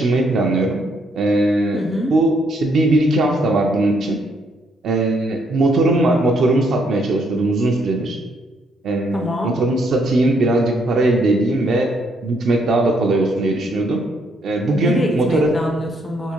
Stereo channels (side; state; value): both; normal; correlation 0.72